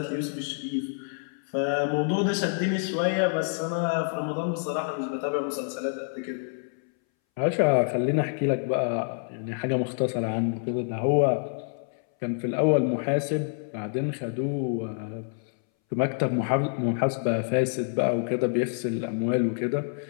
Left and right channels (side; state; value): right; silent; 60 dB below the other